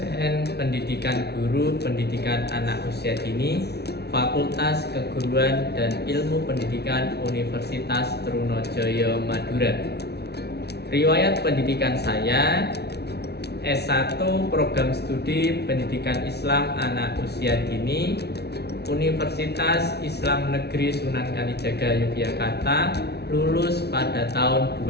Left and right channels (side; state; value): right; late; 0.48 ms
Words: pendidikan guru pendidikan anak usia dini, Fakultas Keguruan dan Ilmu Pendidikan Universitas Trunojoyo Madura. Riwayat pendidikan saya: S1 Program Studi Pendidikan Islam Anak Usia Dini, Universitas Islam Negeri Sunan Kalijaga Yogyakarta, lulus pada tahun